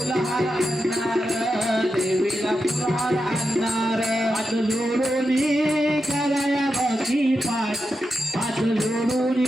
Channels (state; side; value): normal; both; correlation 0.88